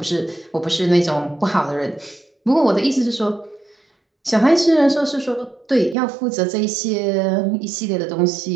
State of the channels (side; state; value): left; drops out; at 6.0 s